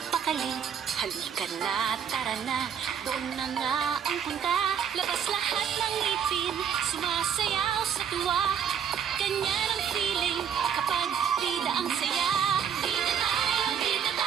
Halika na, tara na, doon na nga ang punta. Labas lahat ng ngipin, sumasayaw sa tuwa. Ganyan ang feeling kapag bida ang saya. Bida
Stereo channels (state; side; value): quieter; left; 8.0 dB